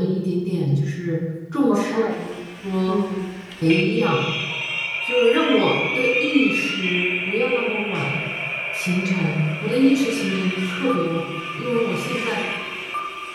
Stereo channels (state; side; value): identical; both; correlation 1.00